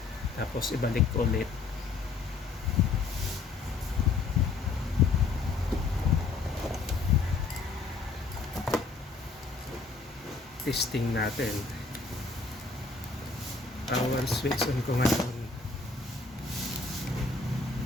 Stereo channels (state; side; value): quieter; right; 4.1 dB